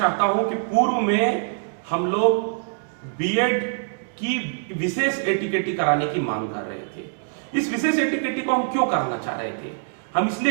हूं कि पूर्व में हम लोग बीएड की विशेष एटीकेटी कराने की मांग कर रहे थे। इस विशेष एटीकेटी को हम क्यों कराना चाह रहे थे? हम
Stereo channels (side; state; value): left; silent; digital silence